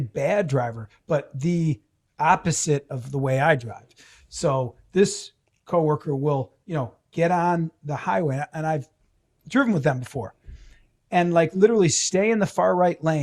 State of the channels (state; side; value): identical; both; correlation 1.00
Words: driver, but the opposite of the way I drive. So this coworker will, get on the highway, and I've driven with them before, and like literally stay in the far right